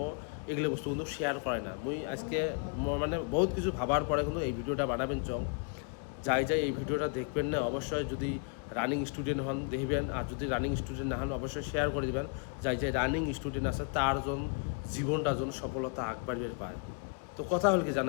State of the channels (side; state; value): right; quieter; 38.4 dB